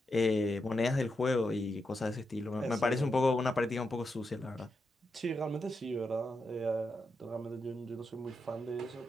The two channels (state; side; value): normal; both; correlation 0.85